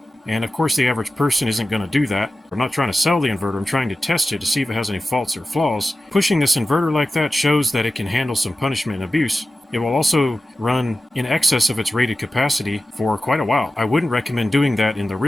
And of course the average person isn't going to do that. I'm not trying to sell the inverter, I'm trying to test it to see if it has any faults or flaws. Pushing this inverter like that shows that it can handle some punishment and abuse. It will also run in excess of its rated capacity for quite a while. I wouldn't recommend doing that in the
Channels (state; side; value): normal; both; correlation 0.94